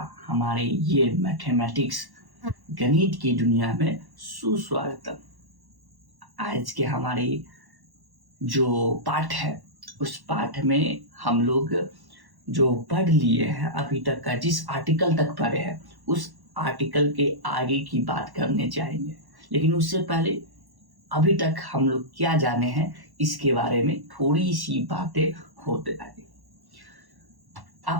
हमारे ये मैथमेटिक्स गणित की दुनिया में सुस्वागतम। आज के हमारे जो पाठ है उस पाठ में हम लोग जो पढ़ लिए हैं अभी तक का, जिस आर्टिकल तक पढ़े हैं उस आर्टिकल के आगे की बात करने जाएंगे। लेकिन उससे पहले अभी तक हम लोग क्या जाने हैं इसके बारे में थोड़ी सी बातें होते जाएंगे।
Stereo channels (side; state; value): left; late; 1.1 ms